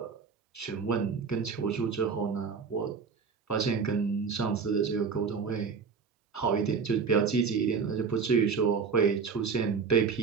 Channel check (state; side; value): quieter; left; 5.6 dB